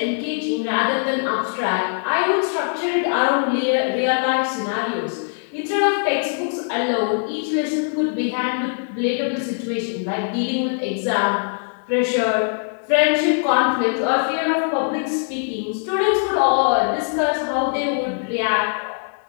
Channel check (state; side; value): silent; right; digital silence